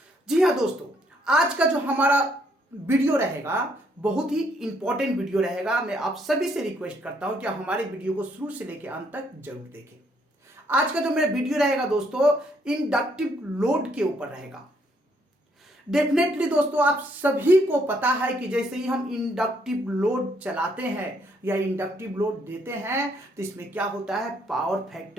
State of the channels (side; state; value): both; normal; correlation 0.70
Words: जी हाँ दोस्तों, आज का जो हमारा वीडियो रहेगा बहुत ही इंपॉर्टेंट वीडियो रहेगा। मैं आप सभी से रिक्वेस्ट करता हूं कि आप हमारे वीडियो को शुरू से लेकर अंत तक जरूर देखें। आज का जो मेरा वीडियो रहेगा दोस्तों, इंडक्टिव लोड के ऊपर रहेगा। डेफिनेटली दोस्तों, आप सभी को पता है कि जैसे ही हम इंडक्टिव लोड चलाते हैं या इंडक्टिव लोड देते हैं तो इसमें क्या होता है, पावर